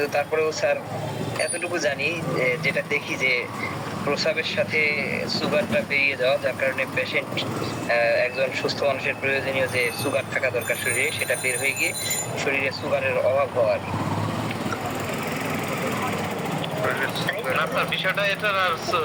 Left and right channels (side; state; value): both; identical; correlation 1.00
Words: তারপরেও স্যার এতটুকু জানি যেটা দেখি যে প্রস্রাবের সাথে সুগারটা বেরিয়ে যাওয়া, যার কারণে পেশেন্ট একজন সুস্থ মানুষের প্রয়োজনীয় যে সুগার থাকা দরকার শরীরে সেটা বের হয়ে গিয়ে শরীরে সুগারের অভাব হওয়ার। বিষয়টা এটা